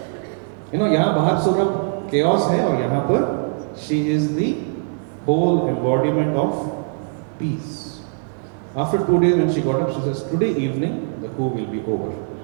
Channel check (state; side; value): silent; left; digital silence